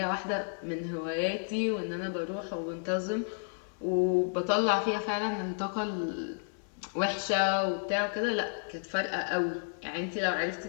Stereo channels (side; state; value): right; silent; 57 dB below the other